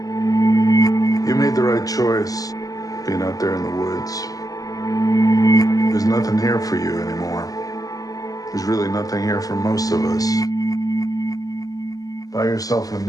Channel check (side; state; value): right; late; 0.17 ms